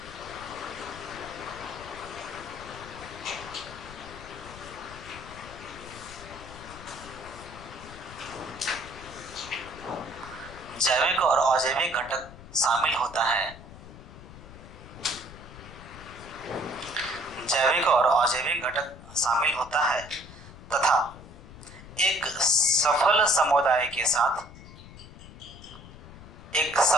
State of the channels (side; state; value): left; noise; rumble, 16 dB below the sound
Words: जैविक और अजैविक घटक शामिल होता है, जैविक और अजैविक घटक शामिल होता है तथा एक सफल समुदाय के साथ, एक